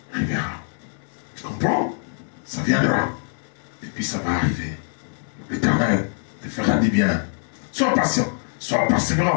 arrivera. Tu comprends? Ça viendra. Et puis ça va arriver. L'Éternel te fera du bien. Sois patient. Sois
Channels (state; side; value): silent; right; 59 dB below the other